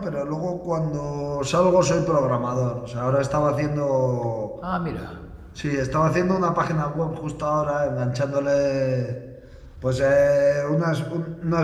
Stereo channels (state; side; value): identical; both; correlation 1.00